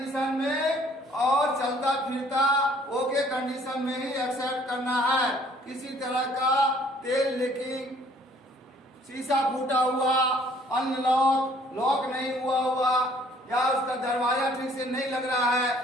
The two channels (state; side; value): normal; both; correlation 0.59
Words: में और चलता फिरता ओके कंडीशन में ही एक्सेप्ट करना है। किसी तरह का तेल लीकिंग, शीशा फूटा हुआ, अनलॉक, लॉक नहीं हुआ या उसका दरवाजा ठीक से नहीं लग रहा है,